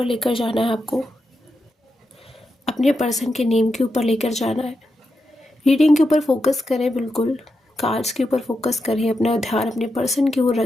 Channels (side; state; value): both; normal; correlation 0.87